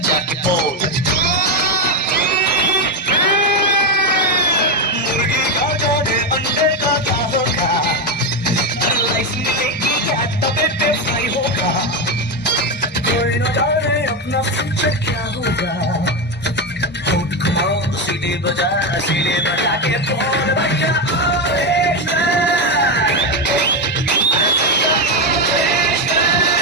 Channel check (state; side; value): normal; both; correlation 0.10